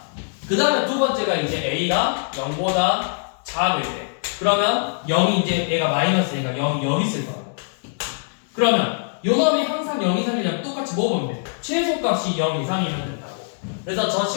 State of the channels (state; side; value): silent; right; 62 dB below the other